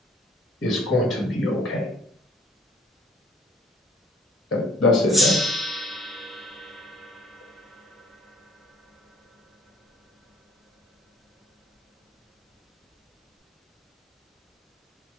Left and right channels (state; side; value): normal; both; correlation 0.57